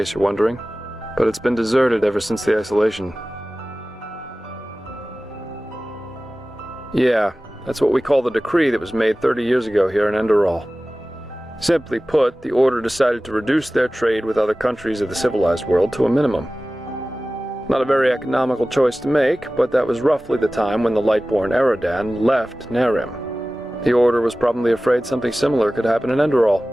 you're wondering, but it's been deserted ever since the isolation. Yeah, that's what we call the decree that was made 30 years ago here in Enderal. Simply put, the order decided to reduce their trade with other countries of the civilized world to a minimum. Not a very economical choice to make, but that was roughly the time when the Lightborn Eradan left Nerim. The order was probably afraid something similar could happen in Enderal.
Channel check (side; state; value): both; normal; correlation 0.97